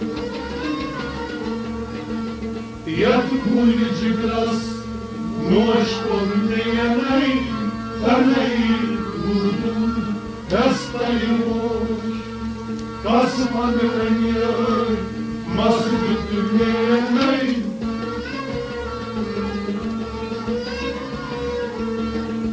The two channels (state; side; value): identical; both; correlation 1.00